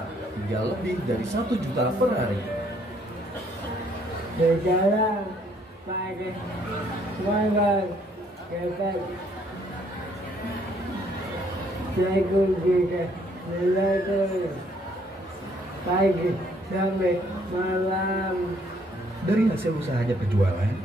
hingga lebih dari 1 juta per hari. Berjalan pakai semangat ketat, jago juga belajar pagi sampai malam. Dari hasil usahanya berjualan,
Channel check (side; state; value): both; normal; correlation 0.66